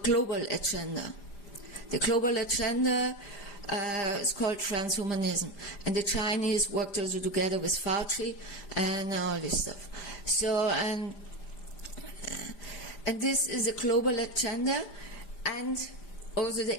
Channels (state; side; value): late; right; 5.0 ms